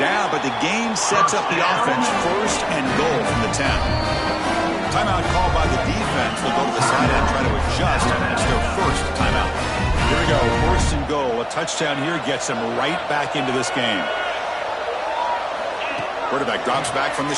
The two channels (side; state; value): both; identical; correlation 1.00